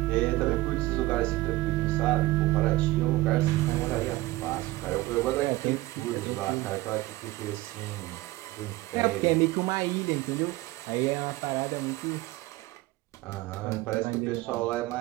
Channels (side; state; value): left; quieter; 18.6 dB